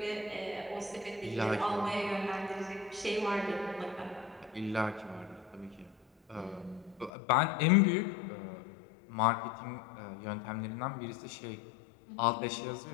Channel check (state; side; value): drops out; right; at 7.1 s